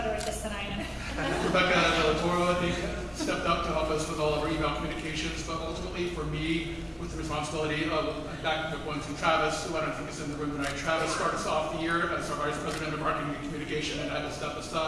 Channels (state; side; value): identical; both; correlation 1.00